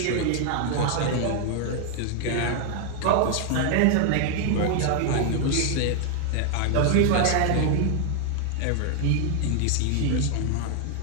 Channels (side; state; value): both; different; correlation 0.00